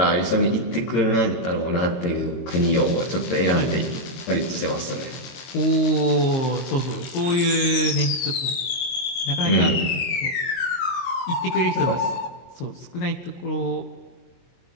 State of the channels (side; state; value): right; late; 23 ms